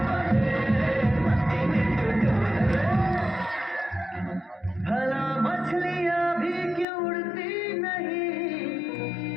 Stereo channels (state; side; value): drops out; right; at 6.9 s